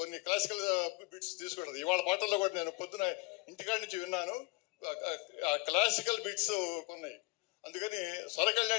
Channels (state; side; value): quieter; right; 24.2 dB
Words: క్లాసికల్ బిట్స్ తీసుకుంటుంది. ఇవాళ పాటల్లో కూడా నేను పొద్దున ఇంటికాడ నుంచి విన్నాను, ఆ క్లాసికల్ బిట్స్ ఉన్నాయి. అందుకని స్వర